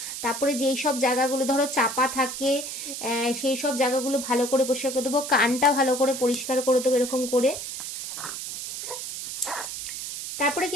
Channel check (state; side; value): noise; right; hiss, 7 dB below the sound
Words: তারপরে যেই সব জায়গাগুলো ধরো চাপা থাকে সেই সব জায়গাগুলো ভালো করে পরিষ্কার করে দেবো। কানটা ভালো করে পরিষ্কার করে দেবো এরকম করে। তারপরে